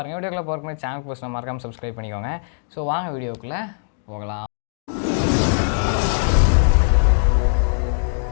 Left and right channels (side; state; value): right; silent; digital silence